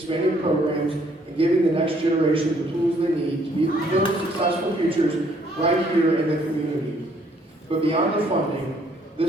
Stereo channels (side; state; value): both; normal; correlation 0.65